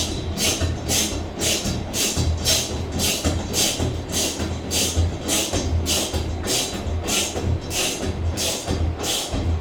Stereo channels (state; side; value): identical; both; correlation 1.00